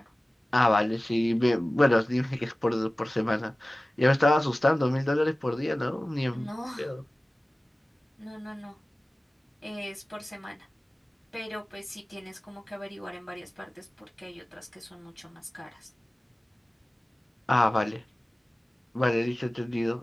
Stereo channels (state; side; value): normal; both; correlation 0.97